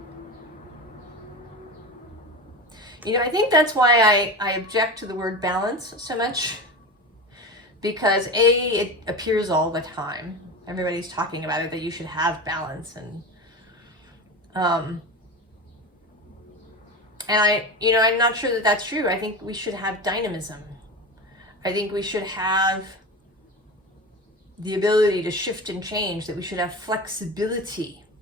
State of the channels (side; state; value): both; normal; correlation 0.26